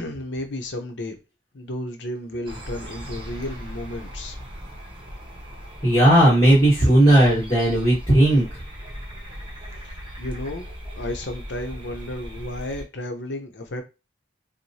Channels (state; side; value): normal; both; correlation 0.78